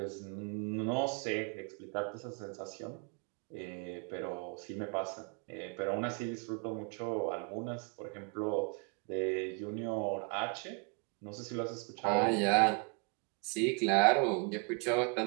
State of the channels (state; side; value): quieter; left; 35.0 dB